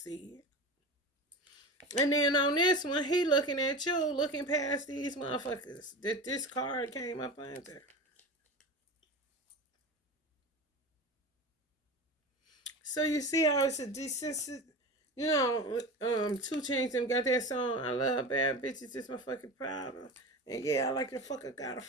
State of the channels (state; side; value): normal; both; correlation 0.29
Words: it. And then on this one, he looking at you, looking past these motherfuckers that this card came up under. So you see how it's a desensitive, you know, 2 Chainz them got that song, I love bad bitches, it's my fucking problem. And yeah, I like the fucker got a